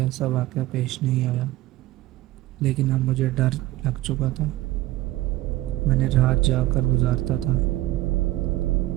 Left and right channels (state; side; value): quieter; left; 16.6 dB